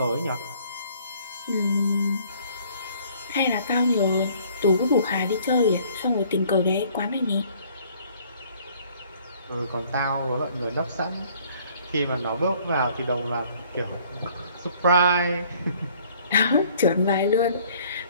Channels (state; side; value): inverted; both; correlation -0.58